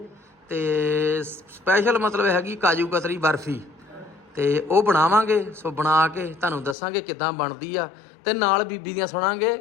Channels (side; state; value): right; drops out; at 6.8 s